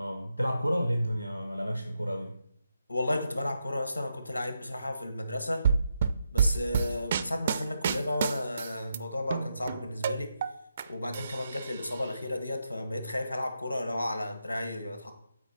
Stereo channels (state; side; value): inverted; both; correlation -0.84